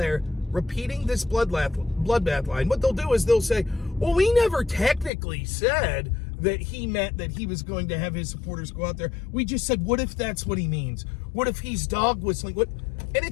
repeating this bloodbath line. What they'll do is they'll say, well, we never technically said that he meant that he was going to have his supporters go out there. We just said, what if that's what he means? What if he's dog whistling? And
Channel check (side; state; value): right; drops out; at 5.1 s